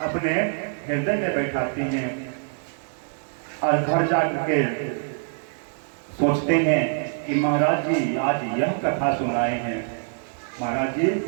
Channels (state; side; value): silent; left; 61 dB below the other